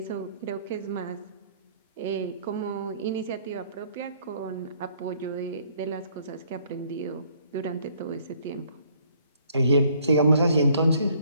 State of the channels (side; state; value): both; inverted; correlation -0.63